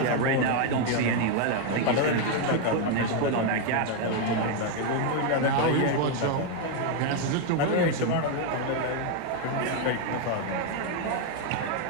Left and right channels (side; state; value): both; different; correlation 0.01